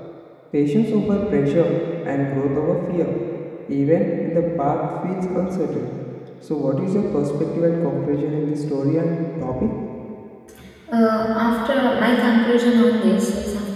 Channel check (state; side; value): identical; both; correlation 1.00